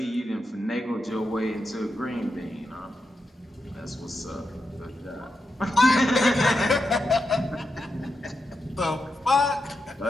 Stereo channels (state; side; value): normal; both; correlation 0.87